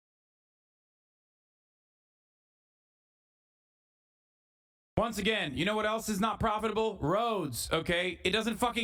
Once again, you know what else is not profitable? Roads, okay? It doesn't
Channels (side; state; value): both; identical; correlation 1.00